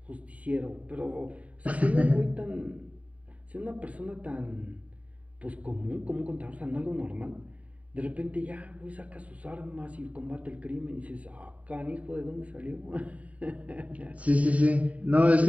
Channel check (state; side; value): late; left; 0.068 ms